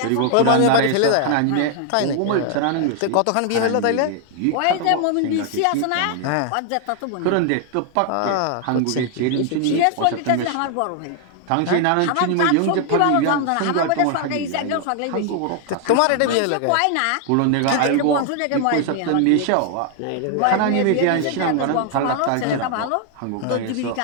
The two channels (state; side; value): different; both; correlation 0.00